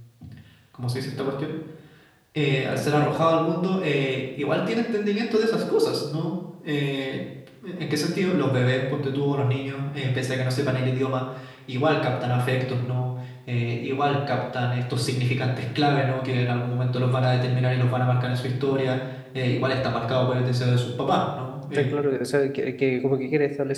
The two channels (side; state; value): both; identical; correlation 1.00